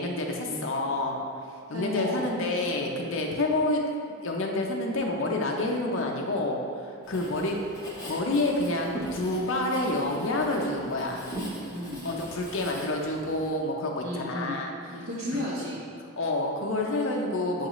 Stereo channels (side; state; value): both; normal; correlation 0.10